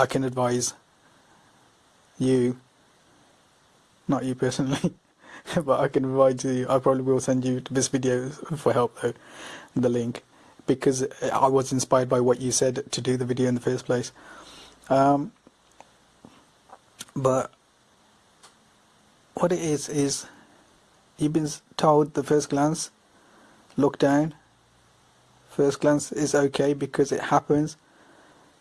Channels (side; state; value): both; identical; correlation 1.00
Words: can advise you, not you personally, but I can advise you. I probably will send you this video for help though, the link, because I was inspired by what you said to do the video in the first place. But what it is you've been told the first glance, look down. First glance is okay because it happens.